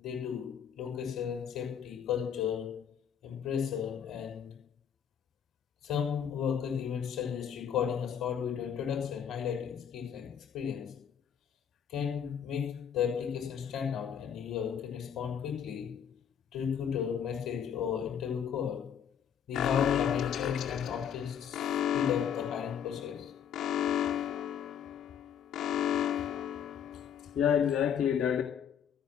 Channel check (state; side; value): quieter; right; 8.3 dB